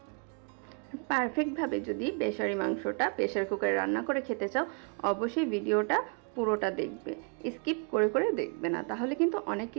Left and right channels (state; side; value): quieter; left; 37.5 dB